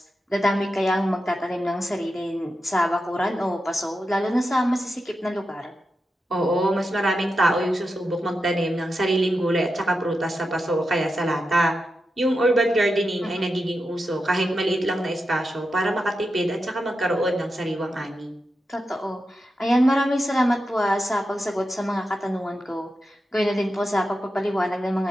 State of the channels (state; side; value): normal; both; correlation 0.89